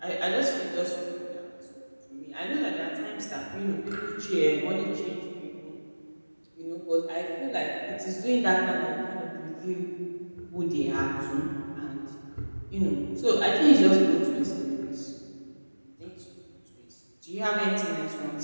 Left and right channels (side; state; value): both; inverted; correlation -1.00